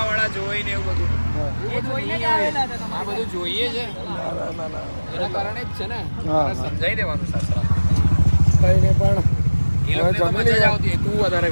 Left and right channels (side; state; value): both; inverted; correlation -1.00